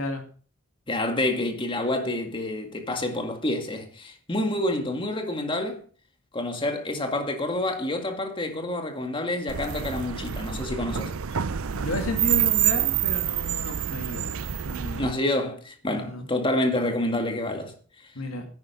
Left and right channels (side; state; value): both; normal; correlation 0.30